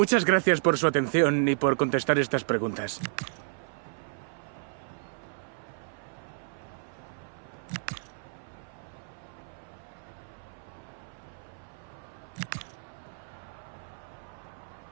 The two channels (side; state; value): left; silent; 56 dB below the other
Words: gracias por su atención y por contestar estas preguntas.